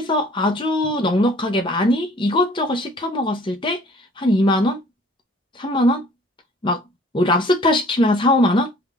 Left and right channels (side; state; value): both; normal; correlation 0.53